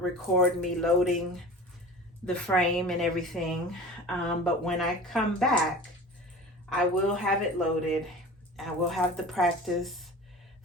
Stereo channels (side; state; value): both; normal; correlation 0.37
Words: me loading the frame and everything, but when I come back, I will have it loaded. I will have the practice